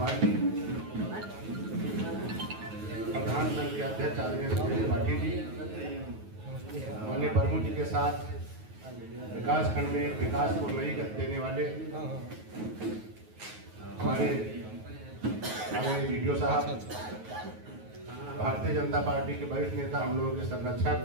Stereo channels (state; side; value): late; left; 9.3 ms